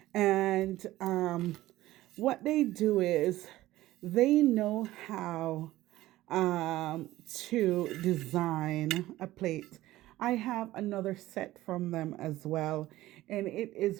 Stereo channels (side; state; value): left; quieter; 16.1 dB